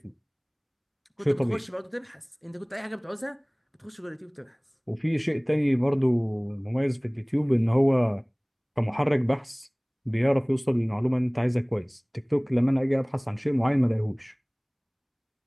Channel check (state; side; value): identical; both; correlation 1.00